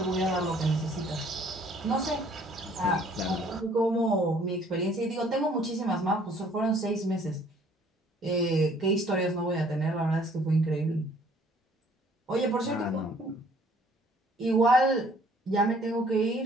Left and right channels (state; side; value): normal; both; correlation 0.59